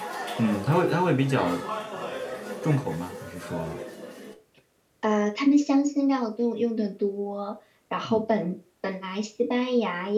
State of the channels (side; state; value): both; identical; correlation 1.00